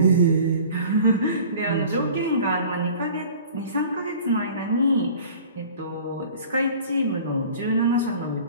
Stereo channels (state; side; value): inverted; both; correlation -0.45